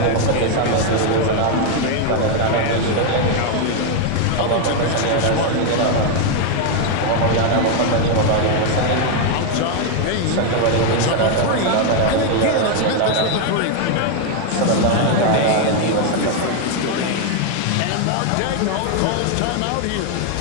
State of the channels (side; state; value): both; different; correlation 0.01